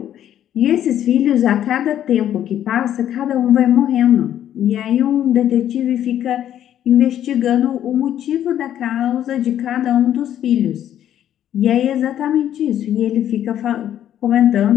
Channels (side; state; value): right; quieter; 10.9 dB